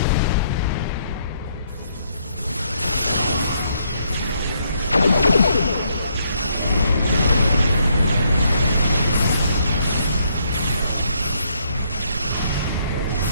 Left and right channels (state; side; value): inverted; both; correlation -0.72